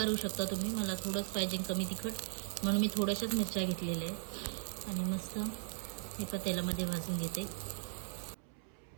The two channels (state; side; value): silent; left; 52 dB below the other